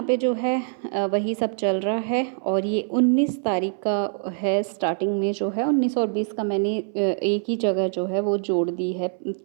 पे जो है वही सब चल रहा है। और ये 19 तारीख का है, स्टार्टिंग में जो है 19 और 20 का मैंने एक ही जगह जो है वो जोड़ दी है,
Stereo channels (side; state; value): left; silent; 60 dB below the other